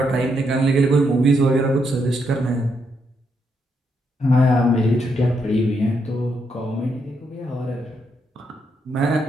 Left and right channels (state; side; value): normal; both; correlation 0.78